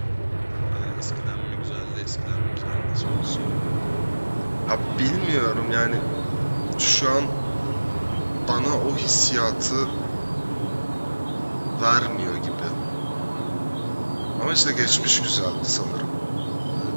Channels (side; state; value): both; inverted; correlation -1.00